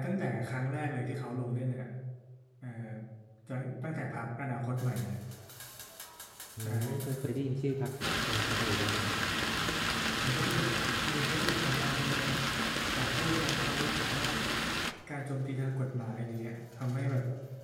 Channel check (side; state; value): both; identical; correlation 1.00